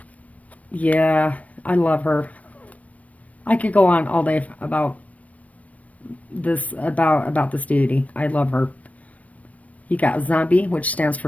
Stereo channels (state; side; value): late; right; 0.068 ms